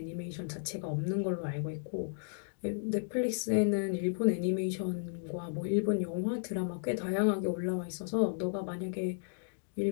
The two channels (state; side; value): silent; right; digital silence